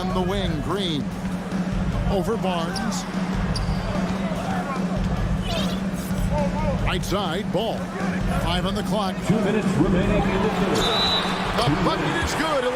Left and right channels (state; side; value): identical; both; correlation 1.00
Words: the wing, Green. Over Barnes. Right side, Ball. 5 on the clock. 2 minutes remaining in the third. The bucket is good,